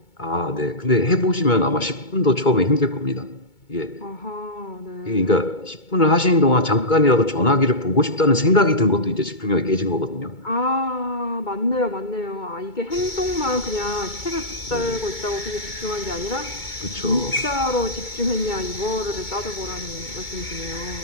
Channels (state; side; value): late; right; 2.2 ms